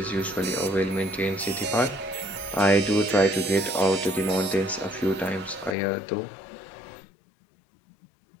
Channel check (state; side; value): drops out; right; at 5.8 s